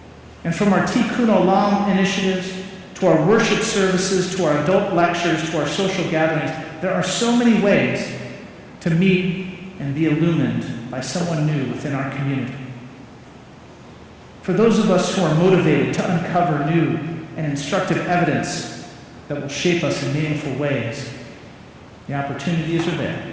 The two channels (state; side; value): identical; both; correlation 1.00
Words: And from our Tikkun Olam initiatives, to our worship services, to our adult lectures, to our social gatherings, there are so many ways to meet and be illumined by someone new within our community. For those of us who are motivated to uncover new and instructive evidence that will shape us in meaningful ways, the opportunities are there.